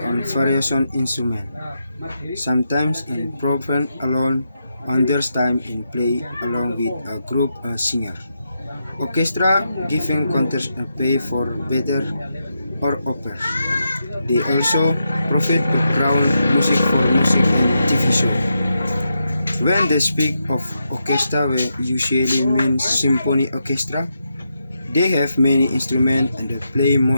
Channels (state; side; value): inverted; both; correlation -0.84